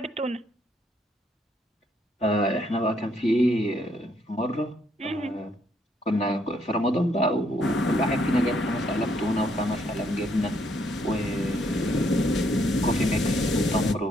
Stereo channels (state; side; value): normal; both; correlation 0.71